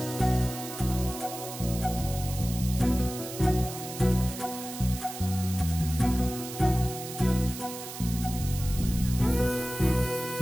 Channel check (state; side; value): noise; right; hiss, 10 dB below the sound